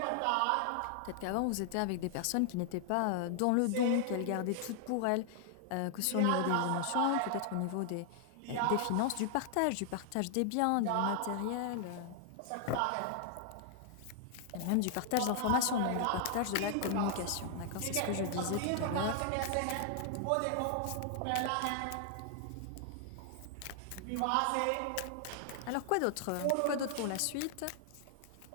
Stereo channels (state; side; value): different; both; correlation 0.00